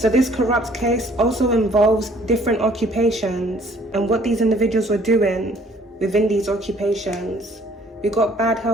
this corrupt case also involves different occupations and what these individuals were doing within these occupations. We got bad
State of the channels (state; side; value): normal; both; correlation 0.58